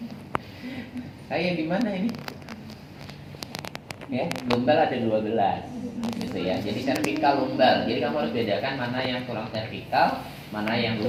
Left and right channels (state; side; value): identical; both; correlation 1.00